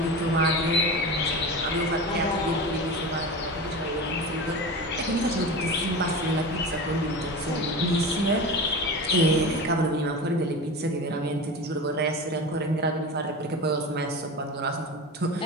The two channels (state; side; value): normal; both; correlation 0.28